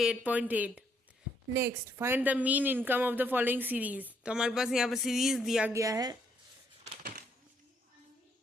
Next find the mean income of the following series. तो हमारे पास यहाँ पर सीरीज दिया गया है,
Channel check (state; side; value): normal; both; correlation 0.71